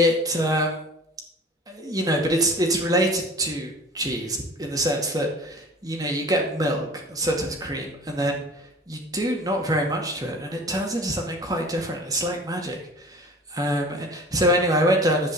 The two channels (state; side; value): normal; both; correlation 0.43